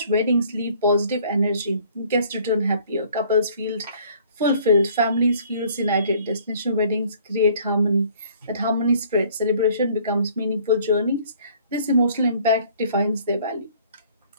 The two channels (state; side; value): inverted; both; correlation -0.57